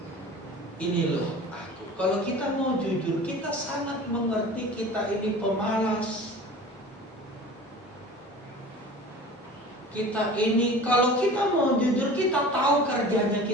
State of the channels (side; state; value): both; normal; correlation 0.40